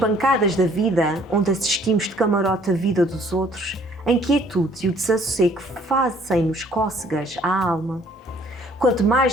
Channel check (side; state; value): both; normal; correlation 0.60